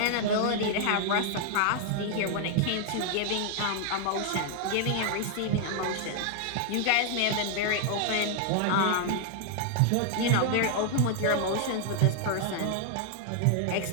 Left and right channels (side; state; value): both; different; correlation 0.00